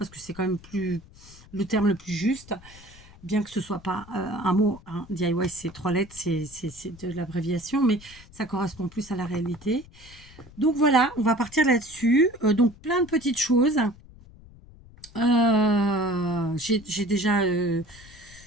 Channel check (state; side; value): noise; left; rumble, 22 dB below the sound